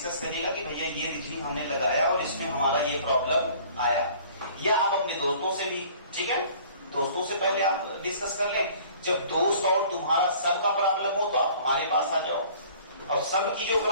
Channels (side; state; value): both; inverted; correlation -0.51